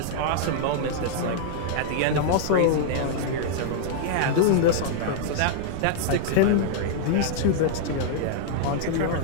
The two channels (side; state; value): both; different; correlation -0.01